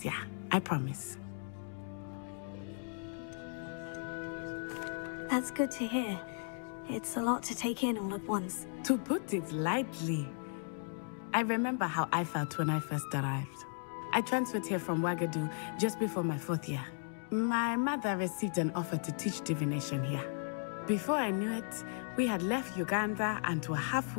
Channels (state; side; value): silent; right; 54 dB below the other